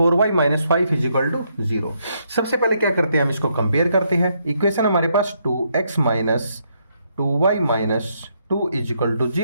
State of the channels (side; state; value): both; inverted; correlation -0.75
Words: minus 5 is equal to 0। सबसे पहले क्या करते हैं, हम इसको कंपेयर करते हैं। इक्वेशन हमारे पास 2x minus 2y minus 2 is equal to